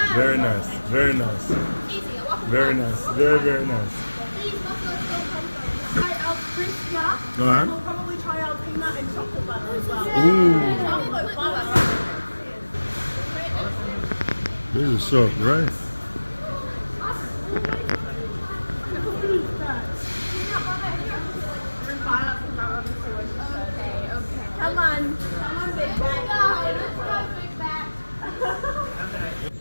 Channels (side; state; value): both; inverted; correlation -1.00